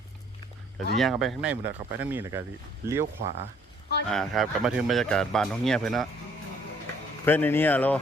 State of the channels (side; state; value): both; normal; correlation 0.62